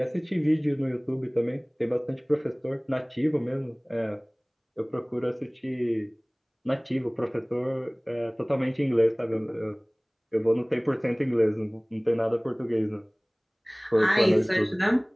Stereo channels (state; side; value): identical; both; correlation 1.00